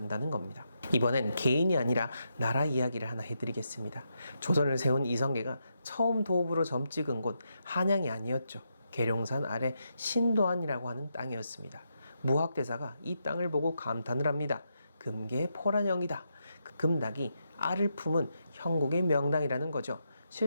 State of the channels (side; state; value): both; inverted; correlation -0.83